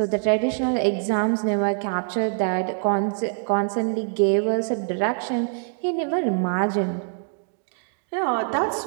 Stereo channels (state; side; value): silent; left; digital silence